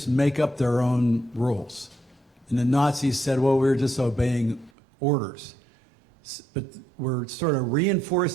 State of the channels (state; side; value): drops out; left; at 4.7 s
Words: make up their own rules. And the Nazis said, well, we're just obeying orders. But we're sort of